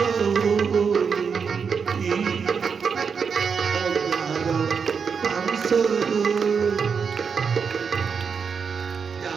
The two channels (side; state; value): left; quieter; 6.1 dB